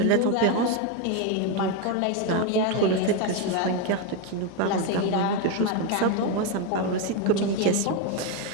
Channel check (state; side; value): different; both; correlation 0.03